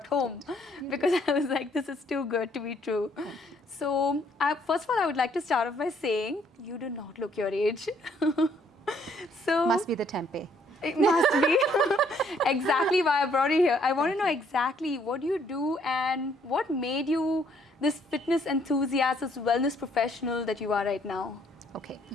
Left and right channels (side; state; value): both; normal; correlation 0.66